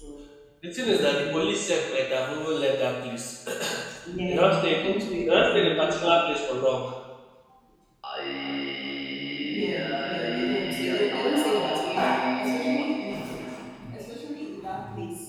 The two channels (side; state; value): both; identical; correlation 1.00